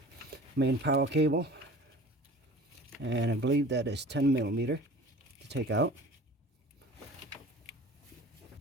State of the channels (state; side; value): normal; both; correlation 0.43